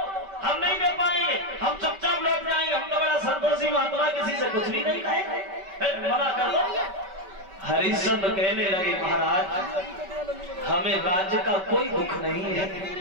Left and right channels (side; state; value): left; late; 5.2 ms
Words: हम नहीं दे पाएंगे, हम चुपचाप लौट जाएंगे, हम तो बड़ा संतोषी महात्मा, किसी से कुछ भी नहीं खाएंगे, मना कर दो। हरिश्चंद्र कहने लगे, महाराज हमें राज्य का कोई दुख नहीं है।